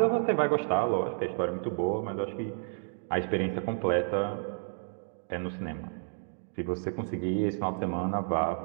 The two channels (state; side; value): silent; left; digital silence